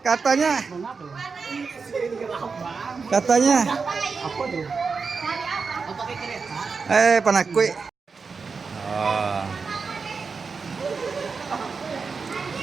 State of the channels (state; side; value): quieter; left; 5.0 dB